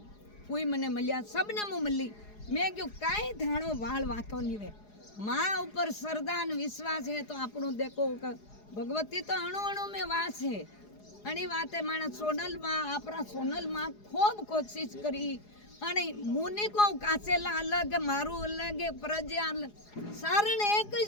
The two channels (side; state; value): right; late; 4.8 ms